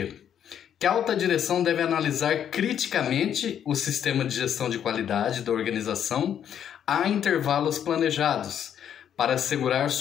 Que a alta direção deve analisar criticamente o sistema de gestão de qualidade da organização a intervalos planejados, para assegurar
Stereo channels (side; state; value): right; quieter; 9.3 dB